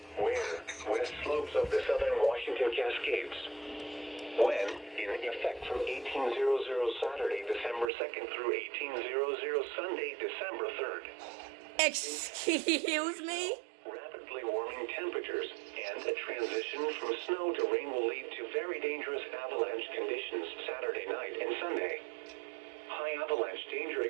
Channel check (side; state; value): left; drops out; at 7.9 s